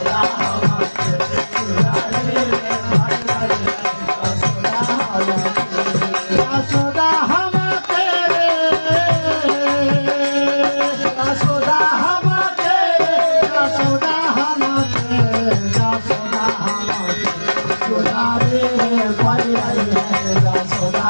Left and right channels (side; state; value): both; inverted; correlation -1.00